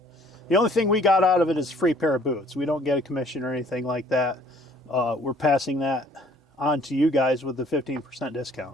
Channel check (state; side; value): normal; both; correlation 0.58